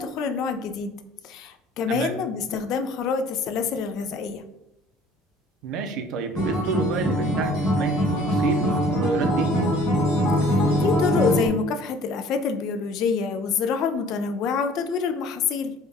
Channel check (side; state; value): both; normal; correlation 0.52